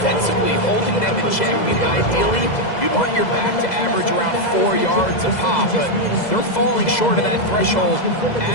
holding them in check. I mean, ideally, you'd want your back to average around 4 yards a pop, but they're falling short of that threshold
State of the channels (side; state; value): right; late; 2.0 ms